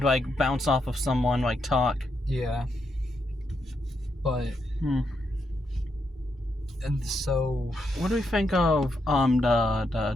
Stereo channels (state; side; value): normal; both; correlation 0.81